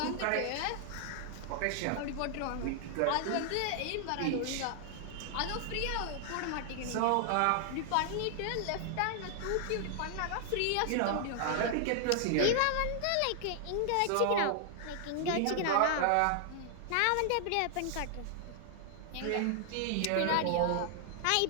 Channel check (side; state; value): both; different; correlation 0.00